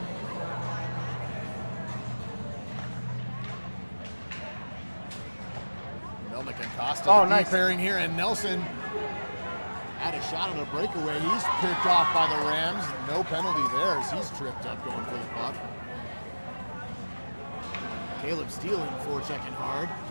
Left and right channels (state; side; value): inverted; both; correlation -1.00